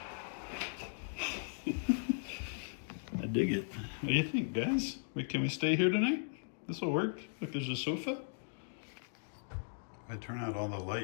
dig it. What do you think, guys? Can we stay here tonight? This will work. Look, there's a sofa. I turn out all the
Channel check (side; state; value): right; silent; digital silence